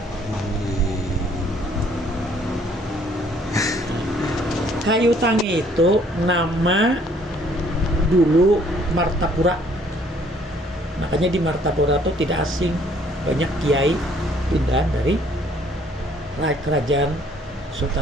Kayu Tangi itu nama dulu Martapura. Makanya di Martapura itu tidak asing, banyak kiai pindah dari kerajaan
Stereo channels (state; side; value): normal; both; correlation 0.61